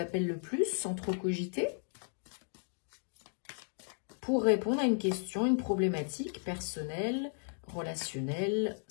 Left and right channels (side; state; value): right; silent; 55 dB below the other